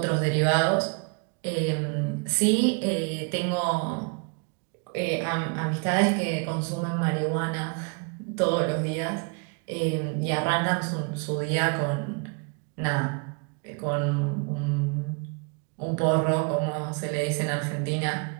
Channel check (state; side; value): quieter; left; 35.5 dB